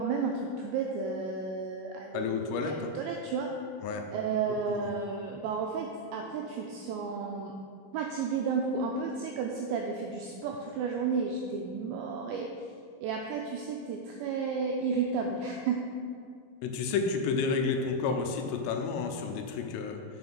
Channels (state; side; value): normal; both; correlation -0.03